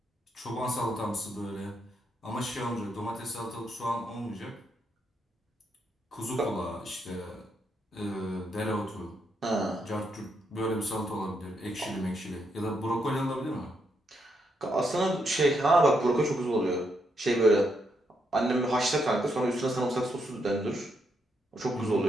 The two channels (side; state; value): both; normal; correlation 0.79